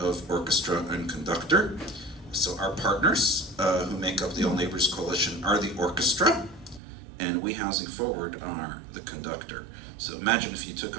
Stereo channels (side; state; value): left; drops out; at 6.8 s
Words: orchestra and conductor. So our partners who make up the All Neighbors Coalition are the orchestra, and We Housing Forward are the conductor. So imagine if you took